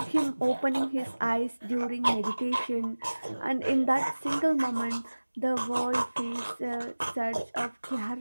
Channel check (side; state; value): both; inverted; correlation -1.00